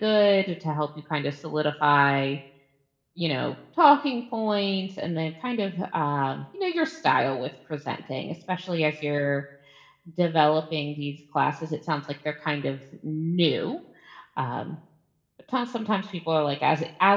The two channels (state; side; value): identical; both; correlation 1.00